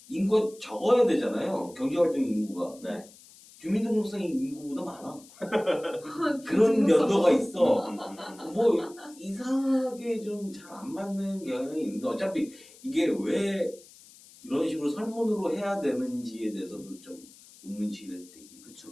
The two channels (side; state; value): left; noise; hiss, 23 dB below the sound